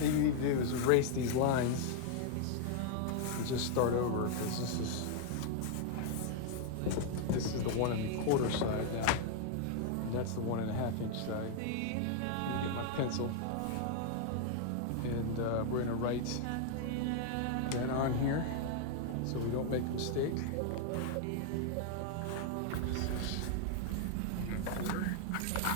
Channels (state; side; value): different; both; correlation 0.00